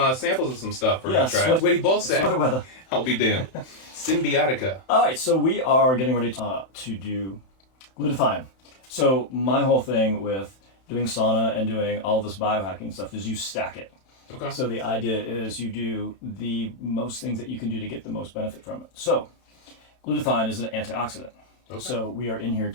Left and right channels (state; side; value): late; right; 31 ms